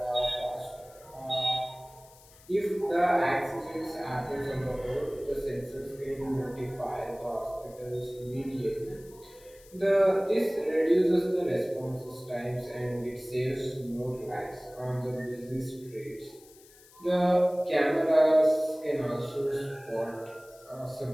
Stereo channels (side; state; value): left; noise; hiss, 25 dB below the sound